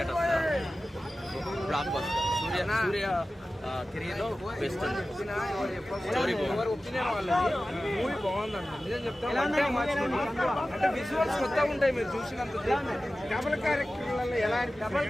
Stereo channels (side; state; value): both; normal; correlation 0.95